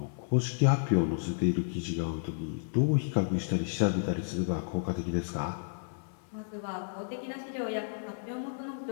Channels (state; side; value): silent; right; digital silence